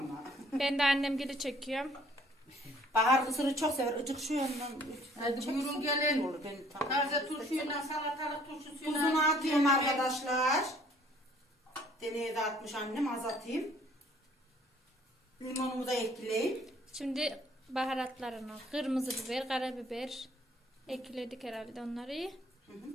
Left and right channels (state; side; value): normal; both; correlation 0.58